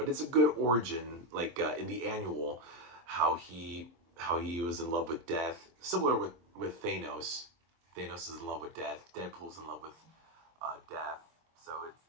it's a good origin. Like in the annual, how he was in love with death, similar with Thanos. Thanos is in love with death. Deadpool's in love with death. So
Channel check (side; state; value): left; late; 23 ms